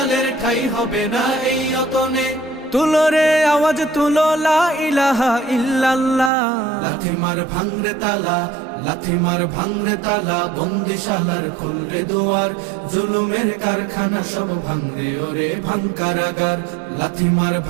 ঠাই হবে না এই অতনে। তুলো রে আওয়াজ তুলো লা ইলাহা ইল্লাল্লাহ। লাথি মার ভাঙরে তালা, লাথি মার ভাঙরে তালা, বন্দিশালার খুলরে দুয়ার, জুলুমের কারখানা সব ভাঙরে ওরে ভাঙ কারাগার। লাথি মার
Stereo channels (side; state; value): left; drops out; at 6.3 s